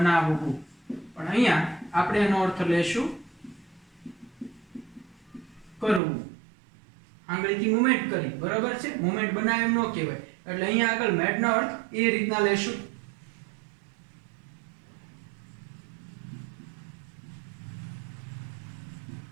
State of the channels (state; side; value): drops out; left; at 6.0 s